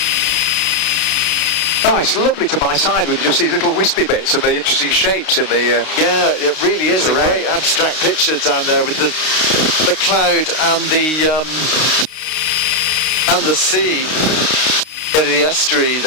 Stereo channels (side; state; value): right; late; 32 ms